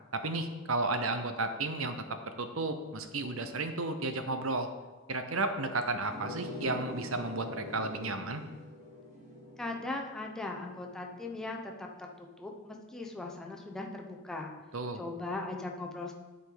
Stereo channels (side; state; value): both; normal; correlation 0.03